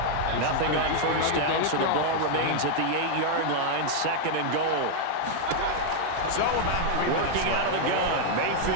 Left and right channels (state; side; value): different; both; correlation 0.00